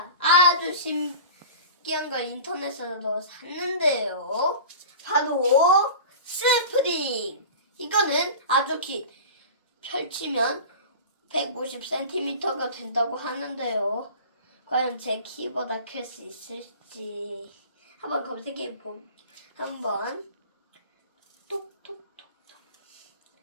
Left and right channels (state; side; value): inverted; both; correlation -0.36